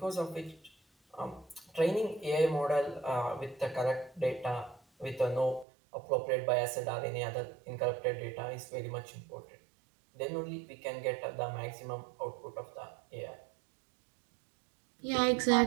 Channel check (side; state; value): left; drops out; at 5.7 s